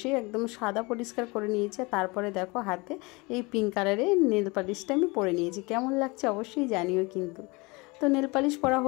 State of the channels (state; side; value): quieter; right; 26.1 dB